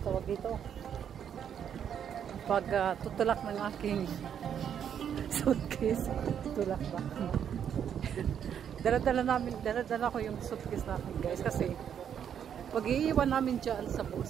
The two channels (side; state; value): left; quieter; 8.6 dB